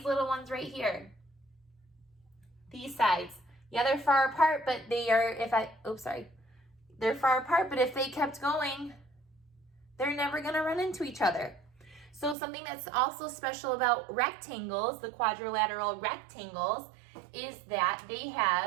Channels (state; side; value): drops out; left; at 12.4 s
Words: little ones right here. These sides. Yeah, they're far apart, but they are, they're far apart, but if they kept going, they're never gonna run into each other. So something that's also special about rectangles, the quadrilateral rectangles, is that they